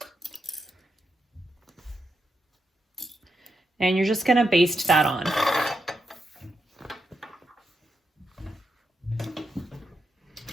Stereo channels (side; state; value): both; normal; correlation 0.84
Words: And you're just going to baste that on.